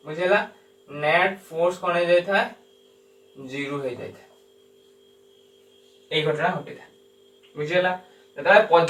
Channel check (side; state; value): both; identical; correlation 1.00